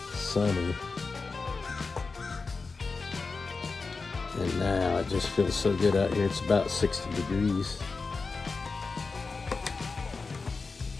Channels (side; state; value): right; quieter; 4.2 dB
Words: sunny. And now it just feels so good out here. It's about 60 degrees.